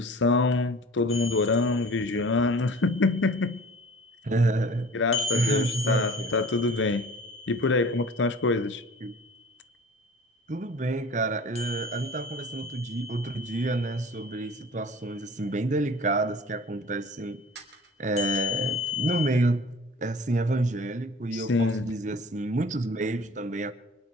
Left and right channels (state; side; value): normal; both; correlation 0.44